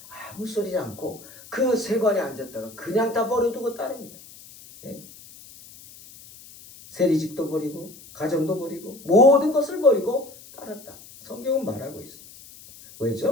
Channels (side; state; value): left; noise; hiss, 20 dB below the sound